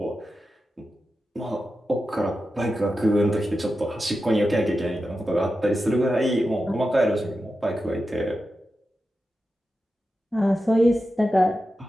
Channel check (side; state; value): both; normal; correlation 0.91